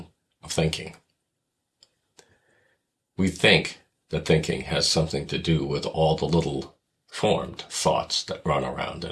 of thinking. We think that thinking has something to do with all the little formed thoughts that run around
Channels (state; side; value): identical; both; correlation 1.00